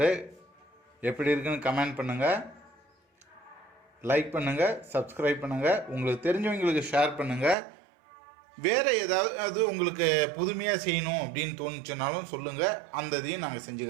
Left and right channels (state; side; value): drops out; left; at 7.6 s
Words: எப்படி இருக்குன்னு கமெண்ட் பண்ணுங்கள், லைக் பண்ணுங்கள், சப்ஸ்கிரைப் பண்ணுங்கள், உங்களுக்கு தெரிஞ்சவங்களுக்கு ஷேர் பண்ணுங்கள். வேறு ஏதாவது உங்களுக்கு புதுமையாக செய்யணும் அப்படின்னு தோணுச்சுனாலும் சொல்லுங்கள், அந்த இதையும் நாங்கள் செஞ்சு